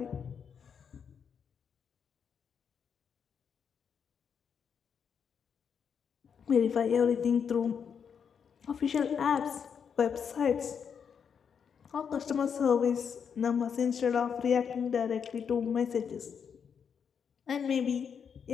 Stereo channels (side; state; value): right; quieter; 7.0 dB